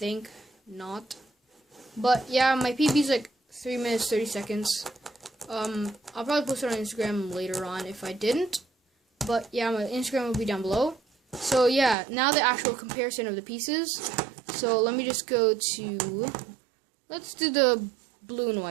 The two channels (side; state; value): left; drops out; at 12.0 s